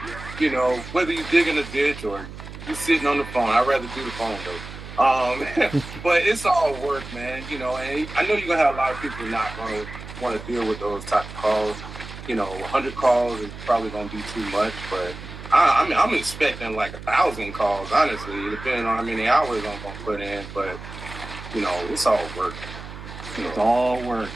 Whether you dig in a ditch or you sitting on the phone. I'd rather do the phone though. But it's all work, man. And I know you're gonna have a lot of people not gonna want to deal with those type of calls. 100 calls is probably gonna be too much, but I'm expecting 1,000 calls, honestly, depending on how many hours I'm gonna put in. But it's all work. It's all work.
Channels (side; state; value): right; noise; hum, 12 dB below the sound